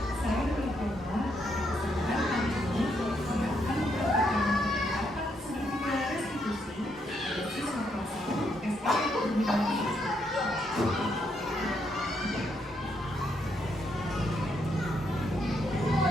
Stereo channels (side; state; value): both; normal; correlation 0.76